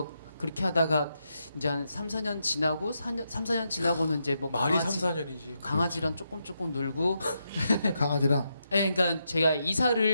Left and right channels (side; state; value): both; inverted; correlation -0.83